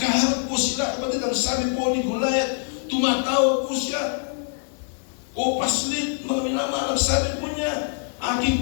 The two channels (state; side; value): silent; right; digital silence